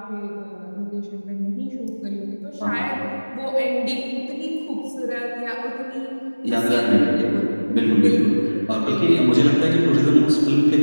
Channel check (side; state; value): both; inverted; correlation -1.00